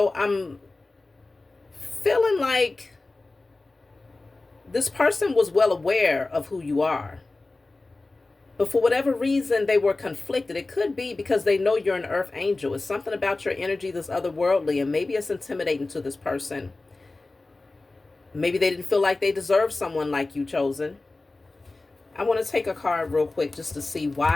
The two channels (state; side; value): quieter; right; 3.2 dB